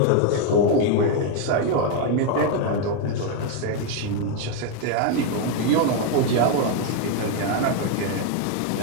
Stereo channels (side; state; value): both; different; correlation 0.01